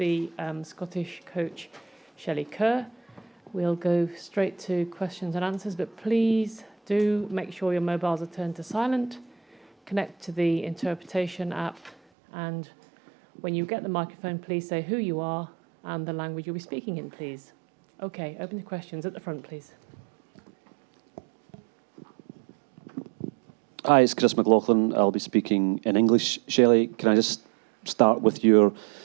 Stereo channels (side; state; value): left; drops out; at 12.0 s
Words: Scottish coach Shelley Kerr. We'll go straight to questions and answers, but please do make sure your mobiles are turned to silent. Connect to the interpretation app, and when you get the microphone, please say who you are and the language you'll be speaking in, please. Okay, open to questions at the front, please. Hi, it's Chris McLaughlin. I'll be speaking in English. Shelley, can I just start with your